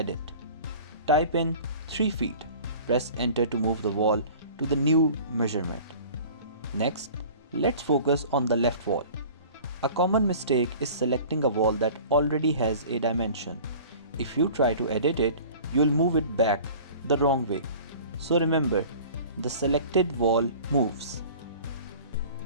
Type in 3 feet. Press enter to move the wall to the new measurement. Next, let's focus on the left wall. A common mistake is selecting a wall that already has a dimension. If you try to edit it, you'll move it back the wrong way. So remember, the selected wall moves.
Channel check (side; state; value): both; inverted; correlation -0.43